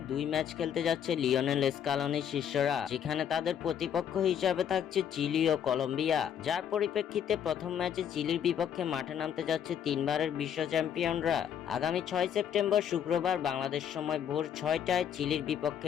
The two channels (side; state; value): right; quieter; 8.9 dB